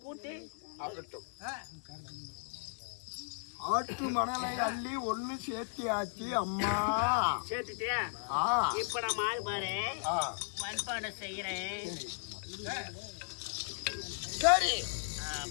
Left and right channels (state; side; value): silent; right; digital silence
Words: கூட்டி ஆகட்டும். ஆற்று மணலை அள்ளி ஒண்ணு சேர்த்தியாச்சு அம்மா. சேர்த்துட்டியா? இப்ப நான் மாறு பாரு மண்பானை செய்யறேன். சரி.